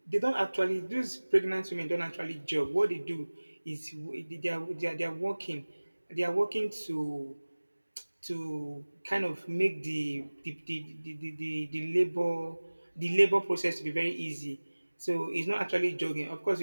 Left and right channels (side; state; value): both; inverted; correlation -1.00